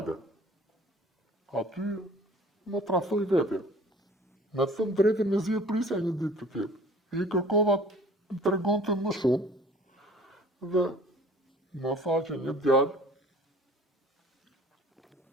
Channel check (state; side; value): normal; both; correlation 0.49